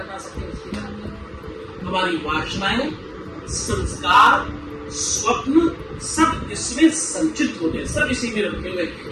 सके उसकी जानकारी। हमारी वासनाएं, संस्कार, स्वप्न सब इसमें संचित होते हैं, सब इसी में रखे हुए।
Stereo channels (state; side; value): identical; both; correlation 1.00